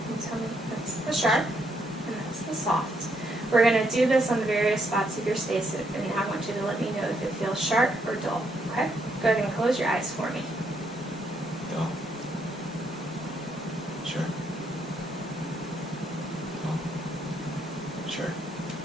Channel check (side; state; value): both; normal; correlation 0.74